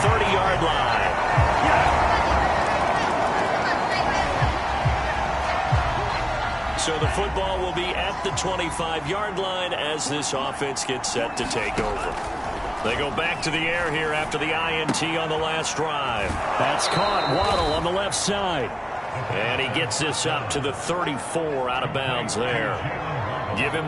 30-yard line. So the football will be at the 25-yard line as this offense gets set to take over. They go back to the air here after the INT on the last drive. That's caught. Waddle on the left side. And he gets this up to the 34 out of bounds there. Give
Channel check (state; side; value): identical; both; correlation 1.00